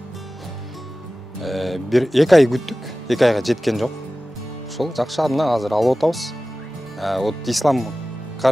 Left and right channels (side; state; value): both; normal; correlation 0.96